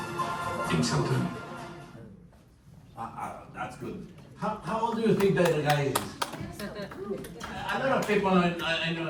Until then. That's good. How old do you think that the guy is? A lot of people I know,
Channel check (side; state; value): both; identical; correlation 1.00